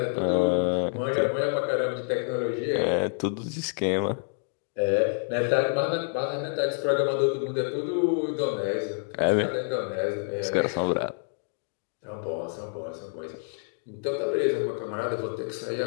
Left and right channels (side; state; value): right; silent; 60 dB below the other